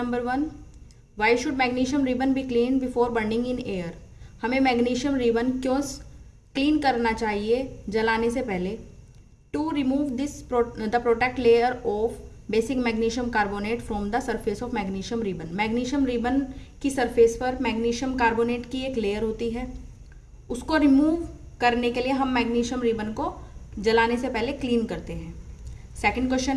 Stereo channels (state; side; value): identical; both; correlation 1.00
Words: 1, why should magnesium ribbon be clean before burning in air. हमें मैग्नीशियम रिबन क्यों क्लीन करना चाहिए जलाने से पहले। To remove this the protect layer of basic magnesium carbonate from the surface of magnesium ribbon. Magnesium ribbon की सरफेस पर मैग्नीशियम कार्बोनेट की एक लेयर होती है, उसको रिमूव करने के लिए हम मैग्नीशियम रिबन को जलाने से पहले क्लीन करते हैं। सेकंड